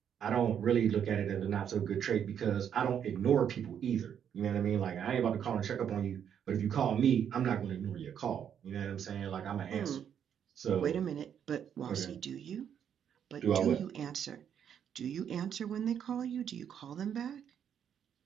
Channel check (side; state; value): left; quieter; 8.6 dB